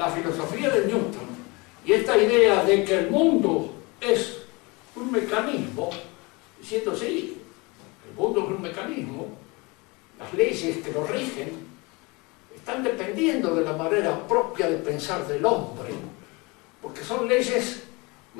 filosofía de Newton y esta idea de que el mundo es un mecanismo, diciendo sí, el mundo es un mecanismo, las leyes que lo rigen están dependiendo de la manera propia de pensar del hombre, porque son leyes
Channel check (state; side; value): quieter; right; 26.4 dB